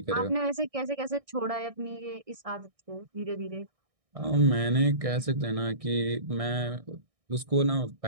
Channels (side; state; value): left; late; 1.6 ms